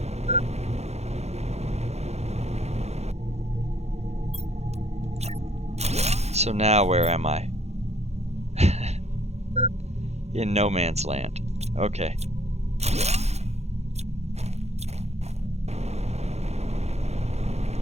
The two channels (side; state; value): left; late; 0.31 ms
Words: So now where am I? In no man's land. Okay.